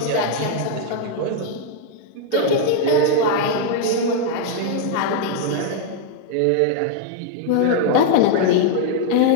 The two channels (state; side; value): different; both; correlation 0.00